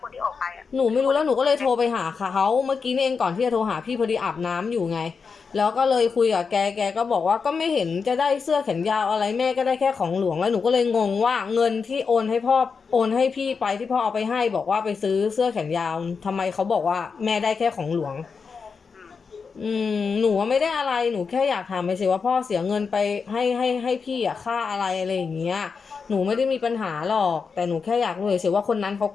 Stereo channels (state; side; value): quieter; right; 5.4 dB